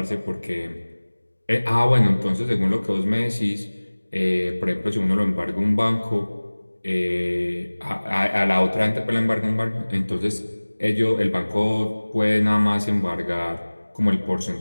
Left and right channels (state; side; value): inverted; both; correlation -1.00